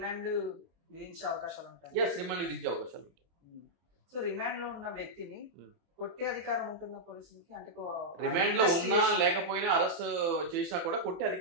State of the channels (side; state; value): left; late; 24 ms